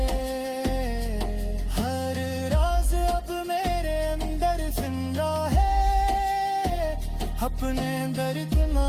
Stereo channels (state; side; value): identical; both; correlation 1.00